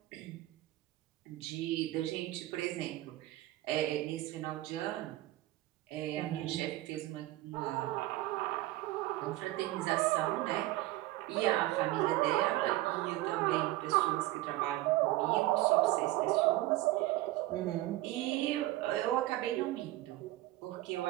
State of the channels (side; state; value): left; quieter; 17.0 dB